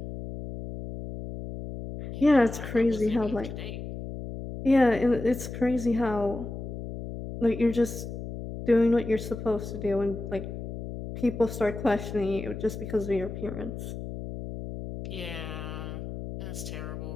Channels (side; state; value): left; noise; hum, 8 dB below the sound